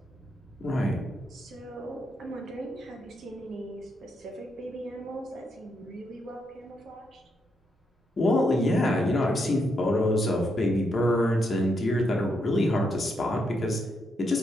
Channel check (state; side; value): normal; both; correlation 0.80